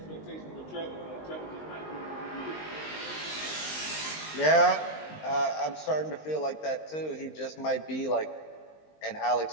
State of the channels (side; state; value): right; late; 19 ms